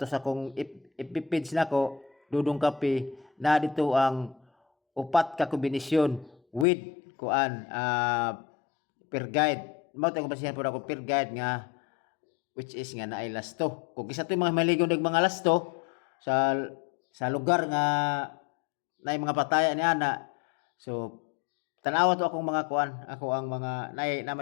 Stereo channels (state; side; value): drops out; right; at 6.7 s